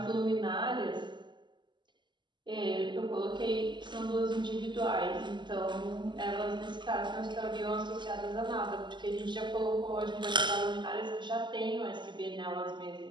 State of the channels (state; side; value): late; left; 0.22 ms